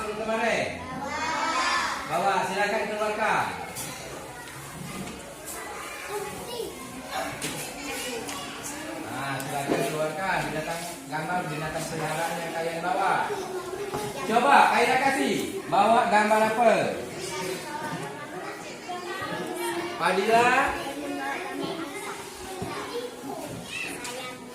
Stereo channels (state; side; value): identical; both; correlation 1.00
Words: kemarin? Bawa, silakan keluarkan. Nah, silakan keluarkan gambar binatang peliharaan yang kalian bawa. Coba, Aira kasih, bawa gambar apa? Padilla?